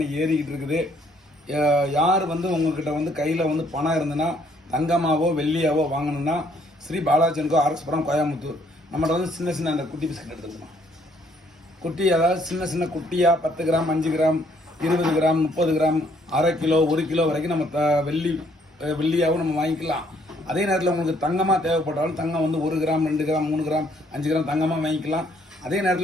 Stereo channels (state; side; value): normal; both; correlation 0.66